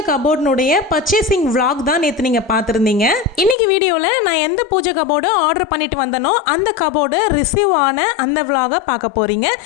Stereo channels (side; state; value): right; drops out; at 3.6 s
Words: கபோர்டினுடைய பர்ச்சேசிங் vlog தான் நேற்று நீங்கள் பார்த்துருந்தீங்க. இன்னைக்கு வீடியோவில் நான் எந்த பூஜை கபோர்டு ஆர்டர் பண்ணிட்டு வந்தனோ அந்த கபோர்டு ரிசீவ் ஆன அந்த vlog பார்க்க போகிறீங்க.